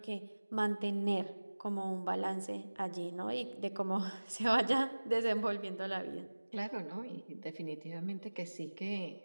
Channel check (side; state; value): both; inverted; correlation -1.00